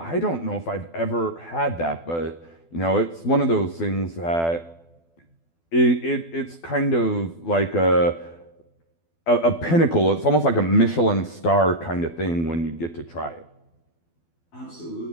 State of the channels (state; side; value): late; right; 12 ms